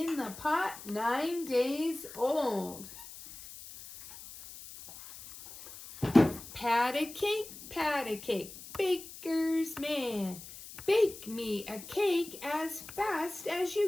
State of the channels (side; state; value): left; noise; hiss, 15 dB below the sound